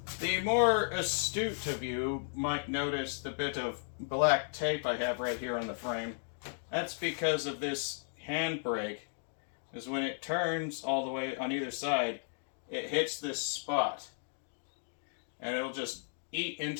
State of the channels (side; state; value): right; silent; digital silence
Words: The more astute of you might notice the bit of black tape I have right here on the frame. That's because of this handbrake. Because when it turns all the way on either side, it hits this spot. And it'll just eat